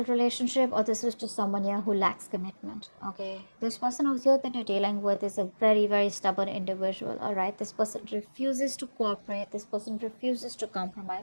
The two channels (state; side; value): inverted; both; correlation -1.00